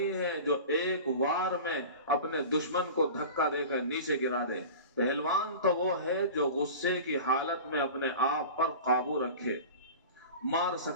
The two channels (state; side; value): inverted; both; correlation -0.35